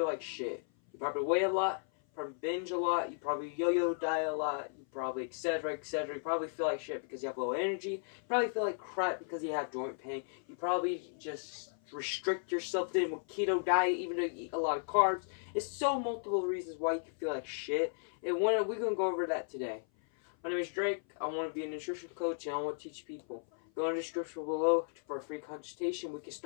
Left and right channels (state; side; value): silent; right; 54 dB below the other